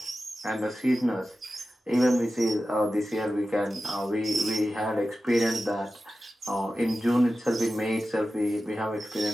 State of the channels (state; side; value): normal; both; correlation 0.93